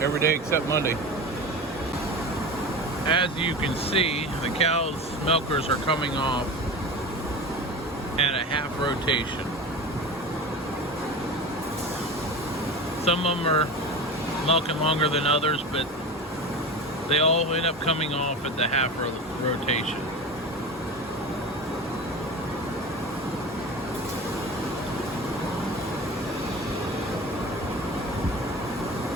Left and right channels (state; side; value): normal; both; correlation 0.30